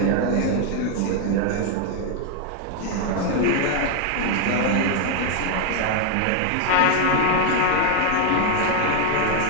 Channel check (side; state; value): both; different; correlation 0.01